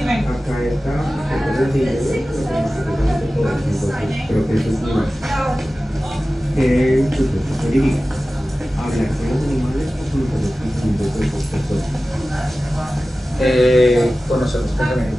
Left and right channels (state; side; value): normal; both; correlation 0.96